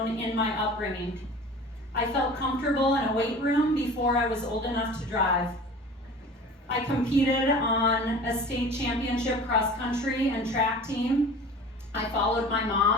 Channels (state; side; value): normal; both; correlation 0.41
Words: in my upbringing. I felt comfortable in a weight room before I was old enough to drive. I competed on a state championship cross-country and track team. I followed my